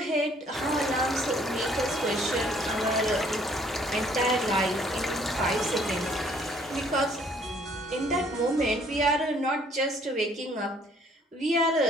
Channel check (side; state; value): both; normal; correlation 0.61